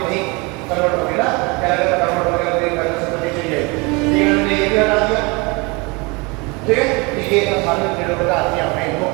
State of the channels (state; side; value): quieter; left; 27.5 dB